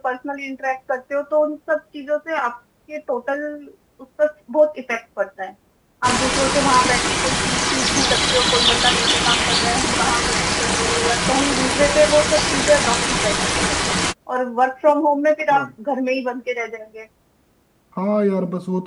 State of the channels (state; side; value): identical; both; correlation 1.00